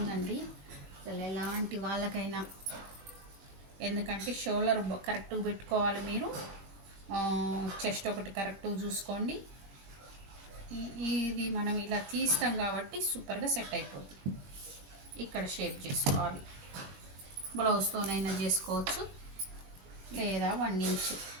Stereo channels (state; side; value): late; left; 21 ms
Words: అండి, అసలు ఎలాంటి వాళ్ళకైనా. ఎందుకంటే షోల్డర్ కరెక్ట్గా పెట్టుకోవాలి మీరు, చెస్ట్ ఒకటి కరెక్ట్గా చూసుకోండి. ఇది మనం ఇలా తీస్తాం కాబట్టి సూపర్గా సెట్ అయిపోద్ది. ఇక్కడ షేప్ చేసుకోవాలి, బ్లౌజ్తోనైనా చేసుకోవచ్చు, లేదా 1